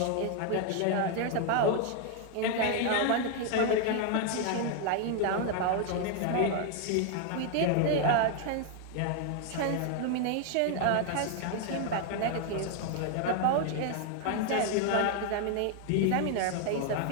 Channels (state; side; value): different; both; correlation 0.00